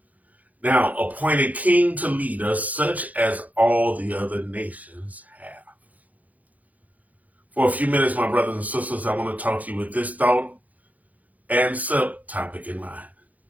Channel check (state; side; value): late; left; 0.077 ms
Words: Now appoint a king to lead us, such as all the other nations have." For a few minutes, my brothers and sisters, I want to talk to you with this thought and subtopic in mind.